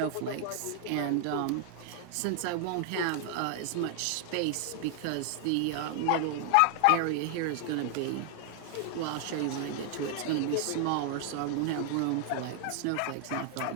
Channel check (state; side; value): different; both; correlation 0.00